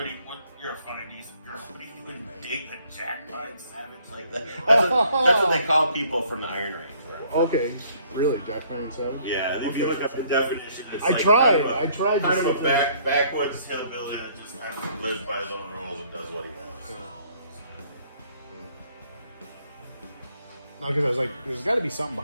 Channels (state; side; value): inverted; both; correlation -0.62